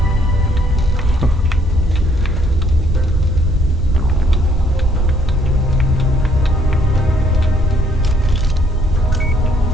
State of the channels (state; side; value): normal; both; correlation 0.66